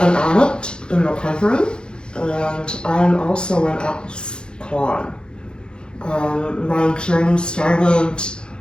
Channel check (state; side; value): late; right; 0.049 ms